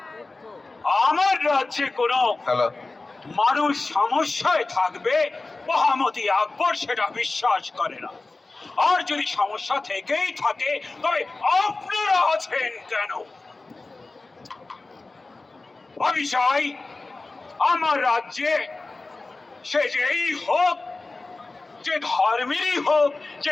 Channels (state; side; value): quieter; right; 3.4 dB